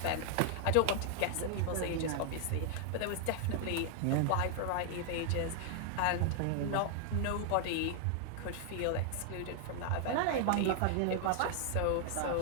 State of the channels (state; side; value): different; both; correlation 0.00